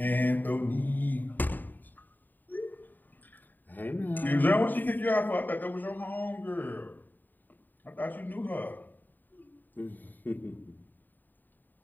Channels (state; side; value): late; right; 0.089 ms